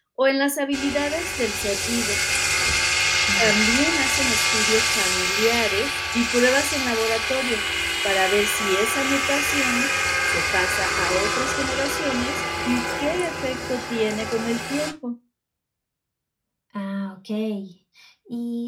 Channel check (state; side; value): identical; both; correlation 1.00